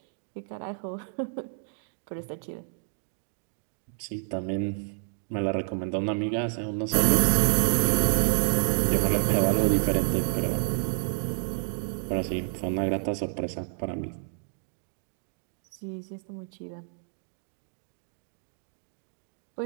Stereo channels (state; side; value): silent; left; digital silence